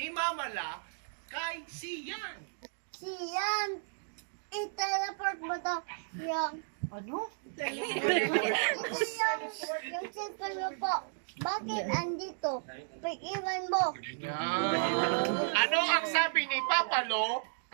Mamala kay Sian? Siyon, i-teleport mo daw yung Ano? yung cellphone mo po. Bakit andito? Pag-iwan mo. Ano ang sabi ni Papalo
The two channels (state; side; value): silent; left; digital silence